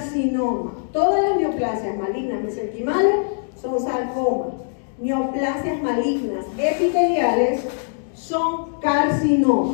Todas las neoplasias malignas mesenquimales son sarcomas. Neoplasias malignas epiteliales son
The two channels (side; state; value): right; silent; digital silence